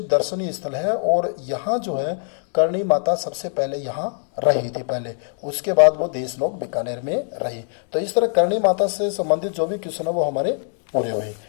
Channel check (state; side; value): silent; right; 56 dB below the other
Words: दर्शनीय स्थल है। और यहाँ जो है करणी माता सबसे पहले यहाँ रही थी पहले, उसके बाद वो देशनोक बीकानेर में रही। तो इस तरह करणी माता से संबंधित जो भी क्वेश्चन है वो हमारे पूरे हुए।